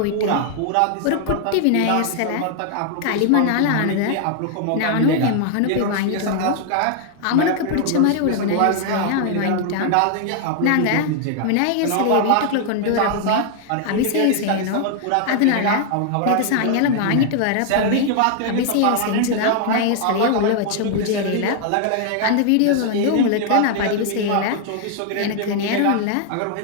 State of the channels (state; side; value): different; both; correlation 0.00